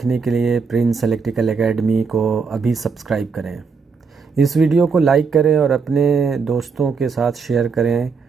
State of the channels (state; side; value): quieter; left; 5.2 dB